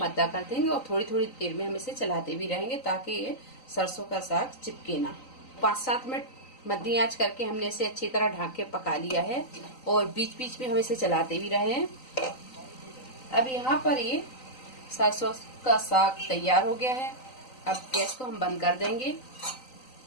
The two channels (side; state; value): right; late; 3.9 ms